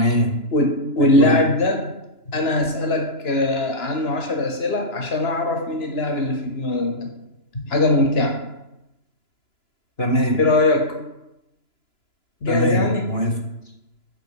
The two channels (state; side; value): late; right; 2.9 ms